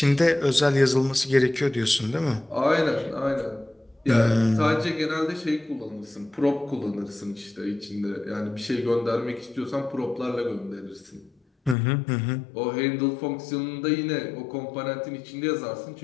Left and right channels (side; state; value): right; drops out; at 11.8 s